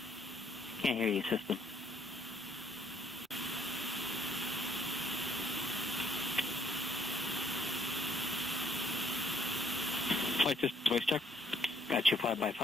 Can't hear you, system. Flight system voice check. Got you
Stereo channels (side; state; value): both; normal; correlation 0.67